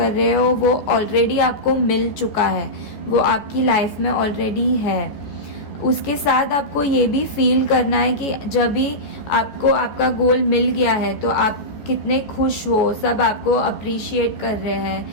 रहे हो वो ऑलरेडी आपको मिल चुका है, वो आपकी लाइफ में ऑलरेडी है. उसके साथ आपको ये भी फील करना है कि जब भी आपको आपका गोल मिल गया है तो आप कितने खुश हो, सब आपको अप्रिशिएट कर रहे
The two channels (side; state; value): right; late; 14 ms